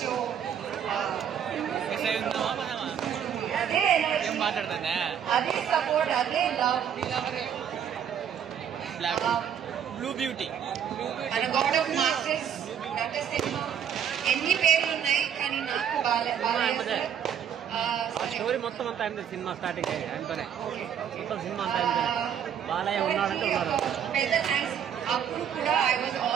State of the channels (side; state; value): left; quieter; 8.7 dB